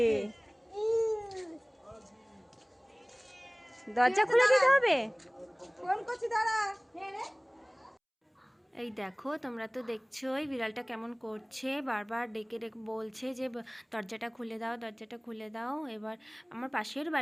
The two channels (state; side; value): identical; both; correlation 1.00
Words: দরজা খুলে দিতে হবে। ফোন করছি, দাঁড়া। এই দেখো, তোমরা তো দেখছোই বিড়ালটা কেমন করছে, বারবার ডেকে ডেকে বলছে যে দরজাটা খুলে দাও, দরজাটা খুলে দাও। এবার আমার পাশের